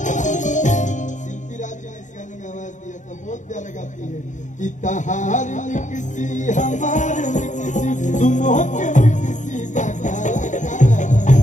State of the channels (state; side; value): late; right; 0.36 ms